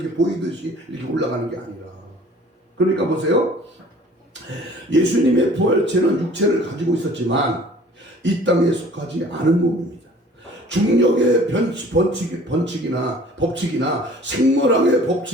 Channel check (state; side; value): normal; both; correlation 0.50